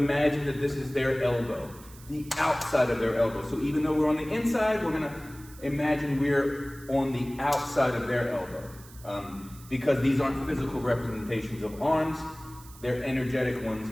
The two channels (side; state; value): right; noise; hiss, 21 dB below the sound